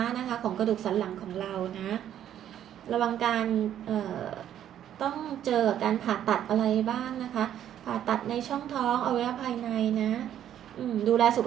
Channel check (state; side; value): quieter; left; 10.7 dB